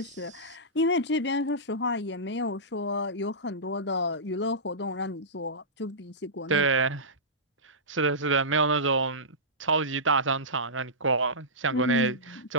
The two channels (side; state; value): both; normal; correlation -0.18